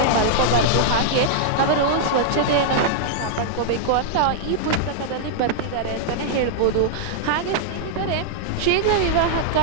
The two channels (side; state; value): both; different; correlation -0.01